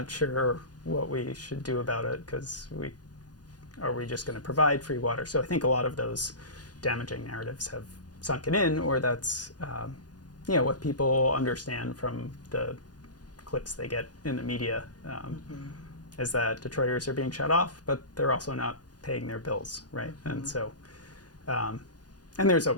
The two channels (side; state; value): right; late; 0.69 ms